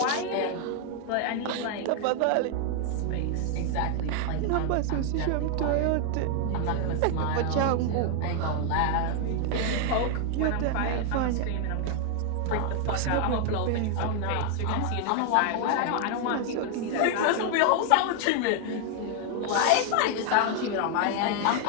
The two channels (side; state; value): both; different; correlation 0.00